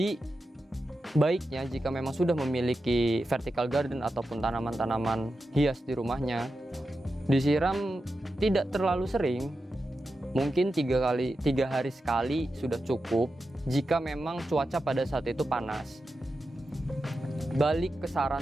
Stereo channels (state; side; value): normal; both; correlation 0.90